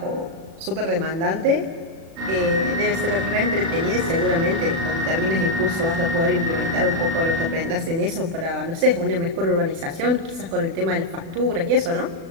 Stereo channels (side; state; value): left; late; 36 ms